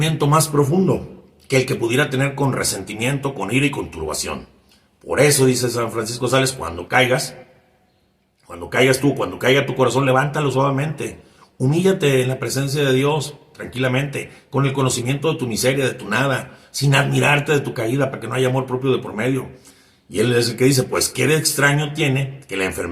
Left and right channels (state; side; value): identical; both; correlation 1.00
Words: más profundo que el que pudiera tener con resentimiento, con ira y con turbación. Por eso, dice San Francisco de Sales, cuando caiga tu corazón, levántalo suavemente. Humíllate en la presencia de Dios, tranquilamente, con el conocimiento de tu miseria, de tu nada, sin admirarte de tu caída, para que no haya amor propio de por medio. Y él es el que dice, pues qué de extraño tiene que la